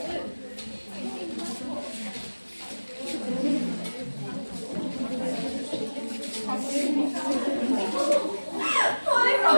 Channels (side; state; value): both; inverted; correlation -1.00